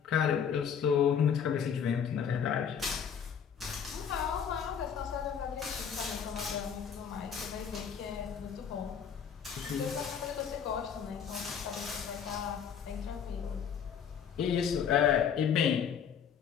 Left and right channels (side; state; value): right; quieter; 7.7 dB